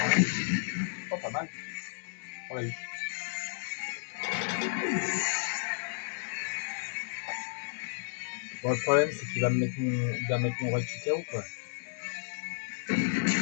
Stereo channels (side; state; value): right; silent; digital silence